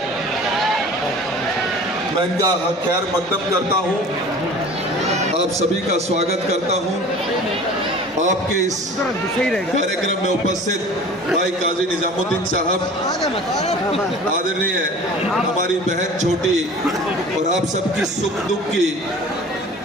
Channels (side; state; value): both; normal; correlation 0.42